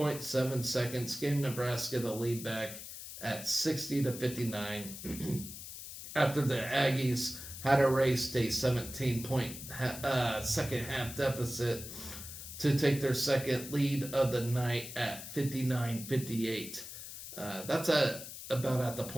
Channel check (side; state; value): left; noise; hiss, 11 dB below the sound